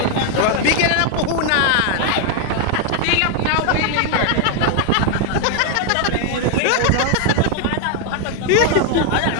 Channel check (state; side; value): different; both; correlation 0.01